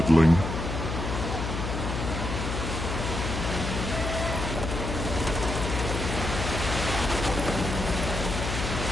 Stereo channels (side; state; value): left; noise; hum, 3 dB below the sound